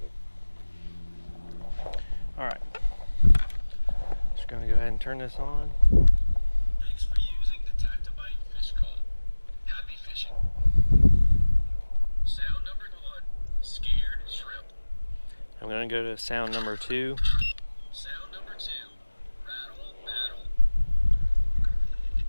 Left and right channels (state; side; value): inverted; both; correlation -1.00